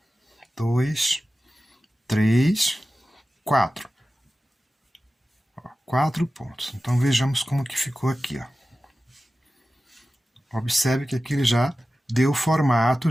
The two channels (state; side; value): normal; both; correlation 0.94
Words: 2, 3, 4. 4 pontos. Então, vejamos como que ficou aqui, ó. Observe que aqui ele já deu o formato